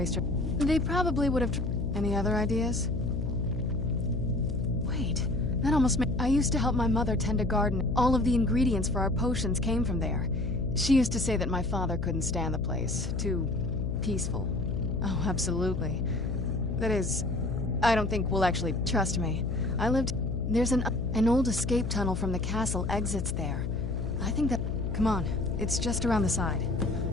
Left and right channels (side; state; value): left; noise; hum, 2 dB below the sound